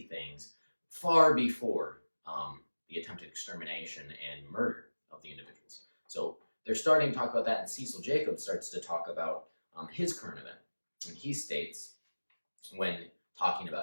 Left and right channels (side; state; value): both; inverted; correlation -1.00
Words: things far before the attempted extermination and murder of the individuals. So they're starting to talk about that, and Cecil Jacobs starts to talk about his current event. And he states, when talking